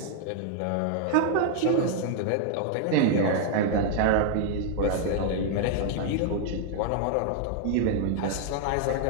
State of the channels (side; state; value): both; different; correlation 0.00